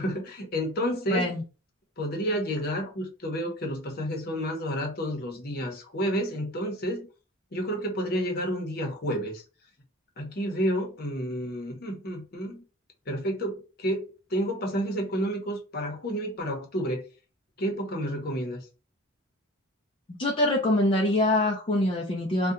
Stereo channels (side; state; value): both; normal; correlation 0.40